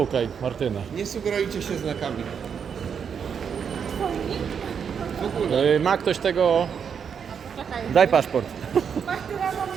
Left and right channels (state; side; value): quieter; left; 7.1 dB